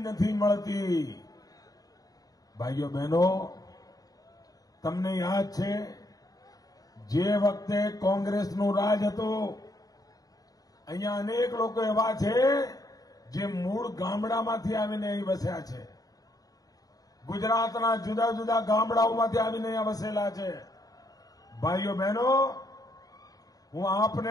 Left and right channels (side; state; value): right; late; 0.18 ms